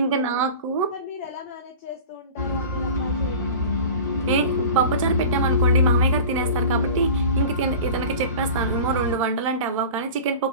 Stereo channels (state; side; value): inverted; both; correlation -0.36